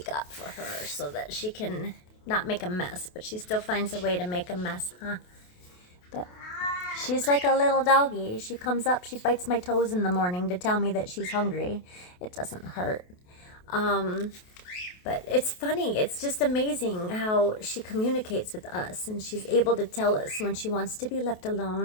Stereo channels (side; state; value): right; late; 28 ms